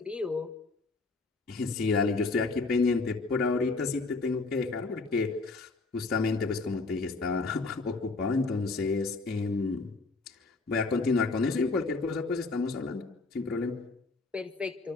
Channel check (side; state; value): right; quieter; 3.7 dB